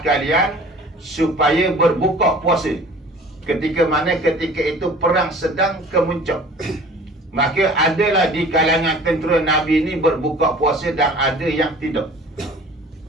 supaya berbuka puasa. Ketika mana ketika itu perang sedang kemuncak. Maka adalah di kalangan tentera Nabi ni berbuka puasa dan ada yang tidak.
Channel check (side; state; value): both; normal; correlation 0.46